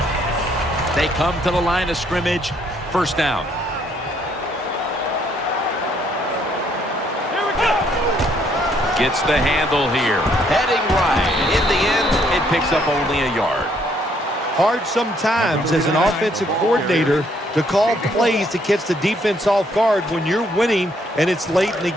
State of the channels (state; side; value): normal; both; correlation 0.68